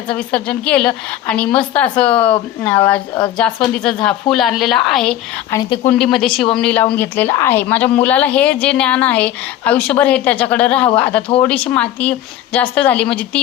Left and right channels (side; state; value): right; quieter; 12.5 dB